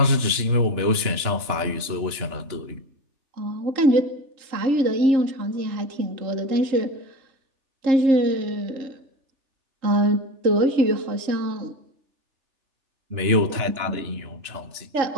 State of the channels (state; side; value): late; left; 3.4 ms